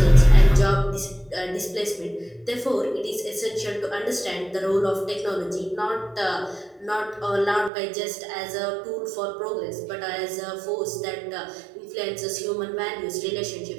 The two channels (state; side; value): drops out; left; at 7.7 s